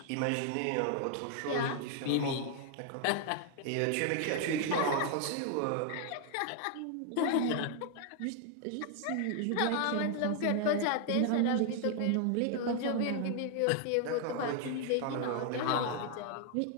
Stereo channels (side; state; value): both; different; correlation 0.00